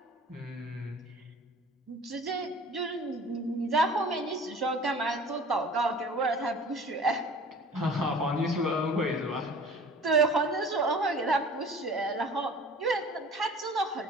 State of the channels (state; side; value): normal; both; correlation 0.44